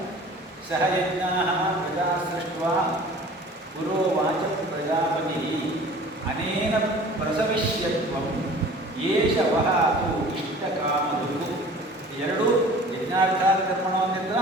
ಸಹಯಜ್ಞಾ ಪ್ರಜಾ ಸೃಷ್ಟ್ವಾ ಪುರೋವಾಚ ಪ್ರಜಾಪತಿ ಅನೇನ ಪ್ರಸವಿಷ್ಯತ್ವಂ ಏಷ ವಹಾತು ಇಷ್ಟಕಾಮದುಃಖ. ಎರಡೂ ಯಜ್ಞಾರ್ಥಾತ್ ಕರ್ಮಣೋನ್ಯತ್ರ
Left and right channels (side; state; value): both; normal; correlation 0.45